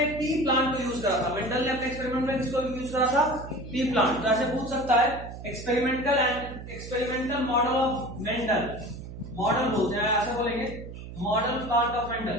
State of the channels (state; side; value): noise; right; hum, 12 dB below the sound